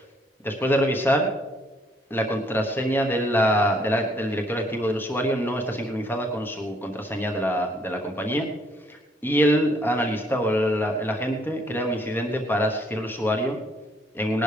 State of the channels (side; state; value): both; normal; correlation 0.66